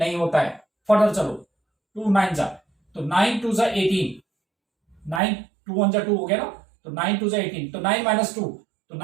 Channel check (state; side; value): drops out; left; at 5.2 s